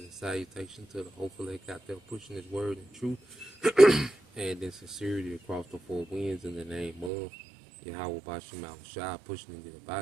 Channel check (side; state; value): left; drops out; at 7.1 s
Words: salutation to the hopeful that got there pushing his word in truth and in sincerity across the four winds in the name of Yahweh Bashem Al Shah, pushing to get